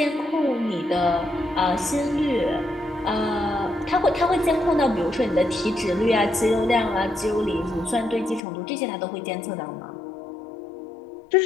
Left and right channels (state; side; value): drops out; right; at 8.4 s